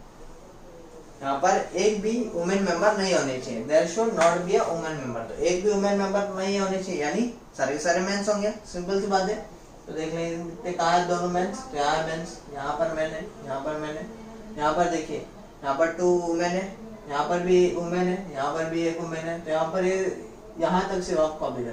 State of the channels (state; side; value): identical; both; correlation 1.00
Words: यहाँ पर एक भी वुमेन मेंबर नहीं होने चाहिए, there should not be a women member. तो एक भी वुमेन मेंबर नहीं होने चाहिए, यानी सारे सारे मेंस होंगे, सिंपल सी बात है। तो देख लेंगे कहाँ है दोनों मेंस, तो यहाँ है मेंस, यहाँ पर मैन है, यहाँ पर मैन है, यहाँ पर देखिए यहाँ पर 2 वुमेन है, यहाँ पर भी वुमेन है, यहाँ पर भी एक वुमेन है। तो यहाँ पर ये यहाँ तक सिर्फ आप कॉपी